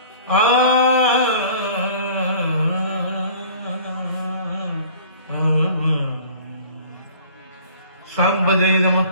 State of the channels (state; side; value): inverted; both; correlation -0.48